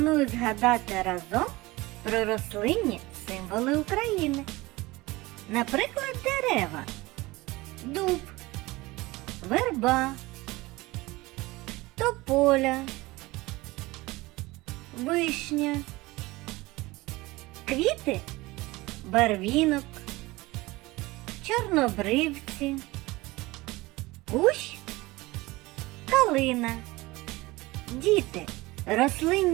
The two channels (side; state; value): left; quieter; 21.0 dB